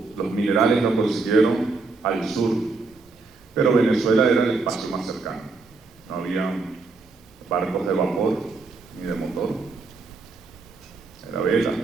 los minerales los consiguieron al sur, pero Venezuela era el espacio más cercano. No había barcos de vapor ni de motor, era vela.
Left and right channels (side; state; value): left; quieter; 3.9 dB